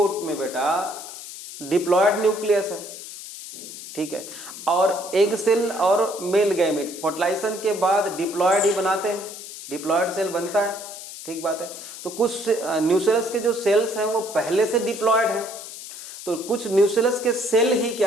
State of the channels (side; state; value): left; noise; hiss, 12 dB below the sound